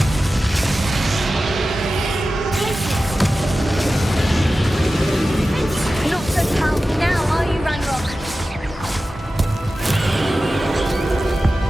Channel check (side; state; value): both; normal; correlation 0.94